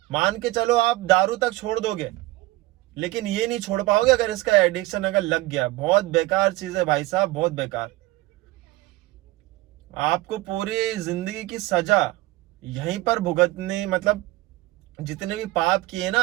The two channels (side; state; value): left; quieter; 18.9 dB